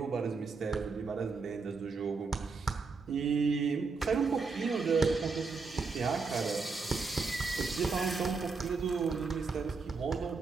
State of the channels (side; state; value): left; quieter; 4.5 dB